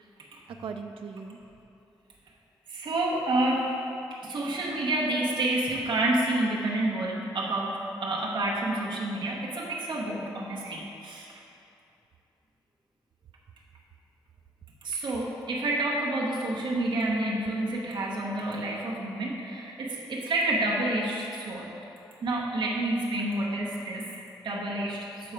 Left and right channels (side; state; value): both; normal; correlation 0.54